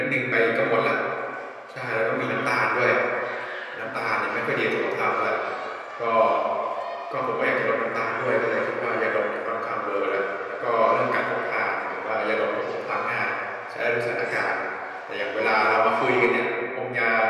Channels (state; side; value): identical; both; correlation 1.00